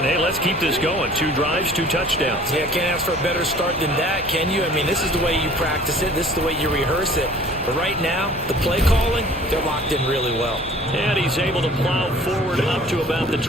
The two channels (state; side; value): normal; both; correlation 0.50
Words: hey, let's keep this going. 2 drives, 2 touchdowns. Yeah, can't ask for a better start than that, can you? I mean, this is the way you practice it. This is the way you rehearse it. But right now, the play calling, they're locked in really well. And he's able to plow forward up to about the